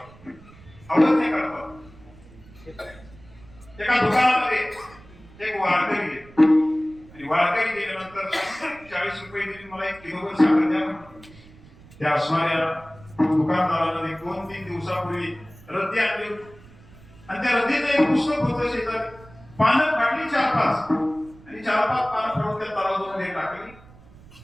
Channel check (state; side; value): noise; right; rumble, 23 dB below the sound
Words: अवज्ञा करतात. एका दुकानामध्ये एक वारकरी आहे आणि वारकरी गेल्यानंतर 40 रुपये दिले मला 1 किलोभर साखर द्या. त्या असणाऱ्या दुकानदाराने 2-3 दिवसापूर्वी रद्दी आणली आणि त्या रद्दीचं एक पुस्तक होतं शेजारी. पानं फाडली 4-5 आणि 4-5 पानं फाडून त्या तराजूमध्ये टाकली